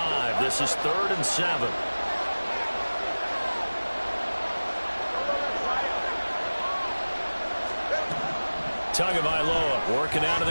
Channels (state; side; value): inverted; both; correlation -1.00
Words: This is 3rd and 7. Tagovailoa working out of